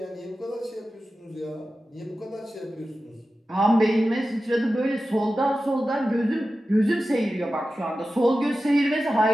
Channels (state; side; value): normal; both; correlation 0.93